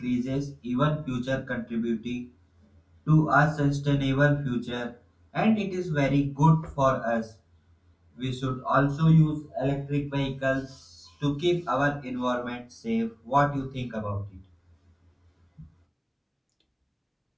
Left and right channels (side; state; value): both; identical; correlation 1.00